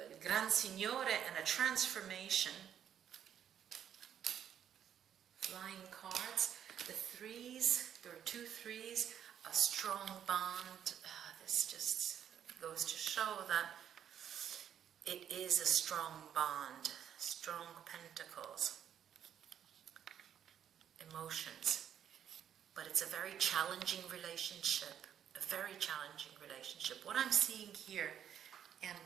Gran Signore, and a transformation. Flying cards. The threes, there are two threes, a strong bond. This just goes to show that it is a strong bond, strong pentacles, emotions. But it's a very challenging relationship, a very challenging relationship. What I'm seeing here, and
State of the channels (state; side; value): quieter; left; 9.4 dB